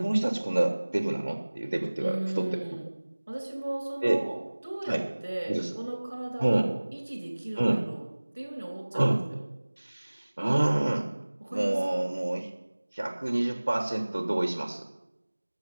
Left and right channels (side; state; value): both; inverted; correlation -1.00